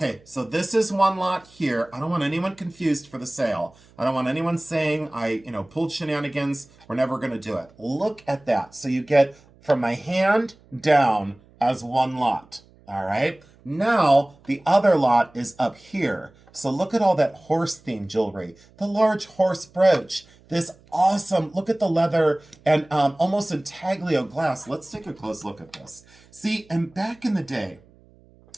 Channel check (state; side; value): noise; right; hum, 28 dB below the sound